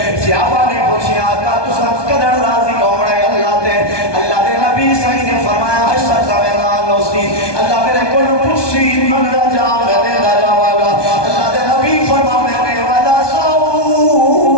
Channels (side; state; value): right; late; 1.2 ms